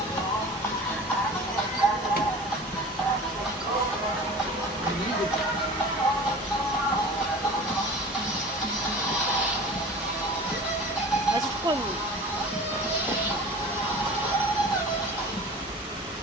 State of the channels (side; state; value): both; normal; correlation 0.38